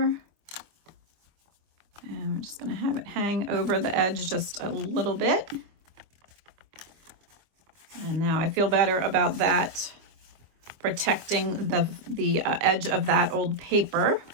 And we're just going to have it hang over the edge just a little bit. And now I feel better about that, protecting the edge of that old paper.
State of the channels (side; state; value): left; late; 25 ms